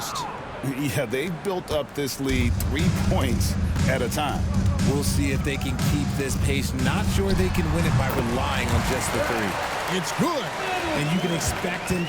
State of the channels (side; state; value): both; identical; correlation 1.00